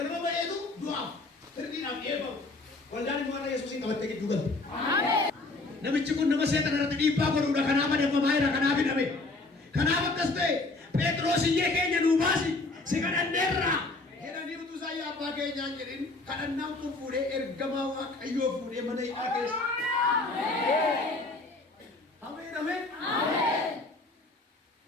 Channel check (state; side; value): quieter; right; 3.2 dB